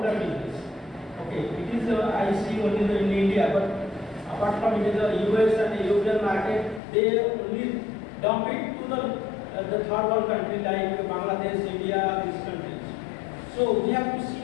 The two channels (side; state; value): right; drops out; at 6.8 s